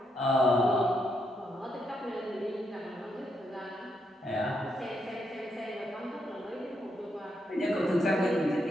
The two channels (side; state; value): both; normal; correlation 0.79